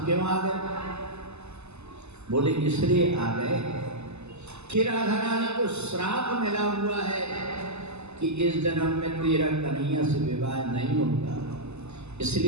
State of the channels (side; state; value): left; late; 0.81 ms